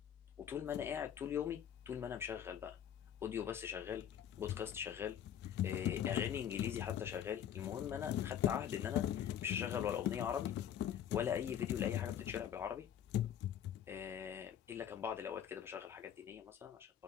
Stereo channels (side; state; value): right; quieter; 9.7 dB